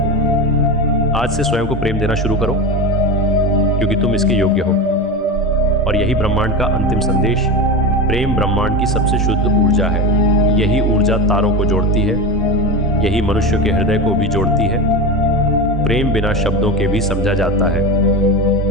आज से स्वयं को प्रेम देना शुरू करो, क्योंकि तुम इसके योग्य हो। और यही ब्रह्मांड का अंतिम संदेश। प्रेम ब्रह्मांड की सबसे शुद्ध ऊर्जा है। यही ऊर्जा तारों को जोड़ती है, यही मनुष्य के हृदय को भी जोड़ती है। प्रेम बिना शब्दों के भी समझा जाता है।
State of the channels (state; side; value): normal; both; correlation 0.22